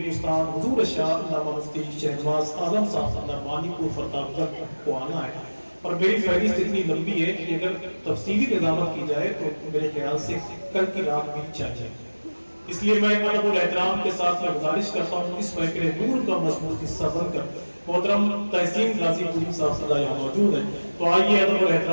حضور شاہ علامہ مفتی شہنواز عالم صاحب نعمانی کو فرتاب تک کو آنا ہے، اور میری فہرست اتنی لمبی ہے کہ اگر تفصیلی نظامت کی جائے تو میرے خیال سے کل کی رات بھی چاہیے۔ اس لیے میں ادب اور احترام کے ساتھ میں گزارش کرتا ہوں اس محفل نور کا مضبوط حصہ بن کر محترم تحسین غازی پوری صاحب صلی اللہ یہاں موجود ہیں، تو آئیے ادب اور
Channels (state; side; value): inverted; both; correlation -1.00